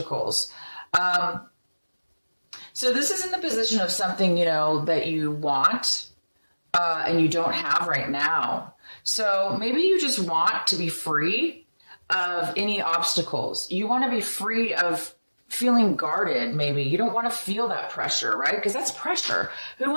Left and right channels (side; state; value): both; inverted; correlation -1.00